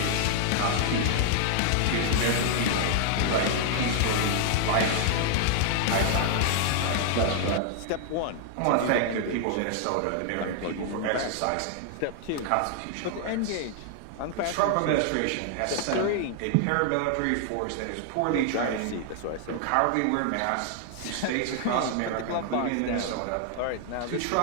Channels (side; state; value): both; different; correlation 0.00